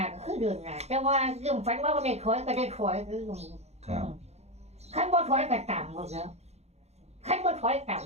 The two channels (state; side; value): late; left; 0.31 ms